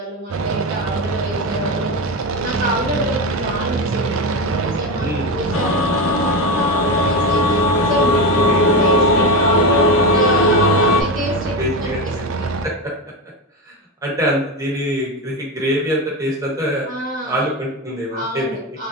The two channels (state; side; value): normal; both; correlation 0.17